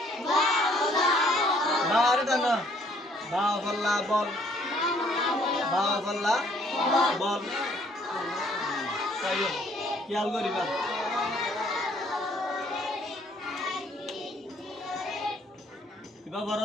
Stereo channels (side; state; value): both; normal; correlation 0.63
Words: বারে টান বা ফল্লা বল বা ফল্লা বল তাইও খেয়াল করিবা কিবা বড়